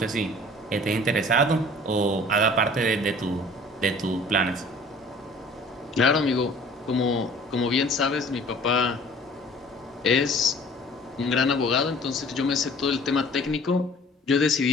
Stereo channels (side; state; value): both; normal; correlation 0.49